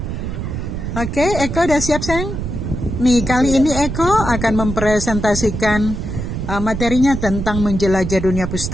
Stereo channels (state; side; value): noise; right; rumble, 5 dB below the sound